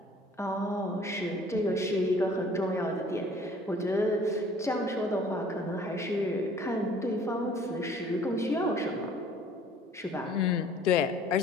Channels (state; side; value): normal; both; correlation 0.53